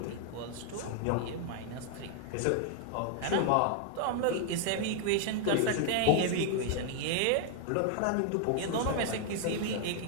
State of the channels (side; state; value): both; different; correlation 0.00